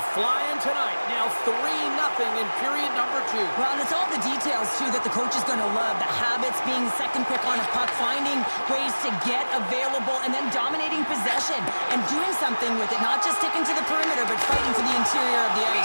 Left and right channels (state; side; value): inverted; both; correlation -1.00